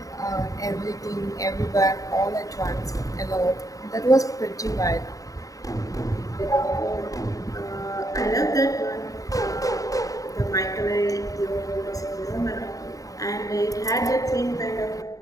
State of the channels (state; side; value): late; right; 0.16 ms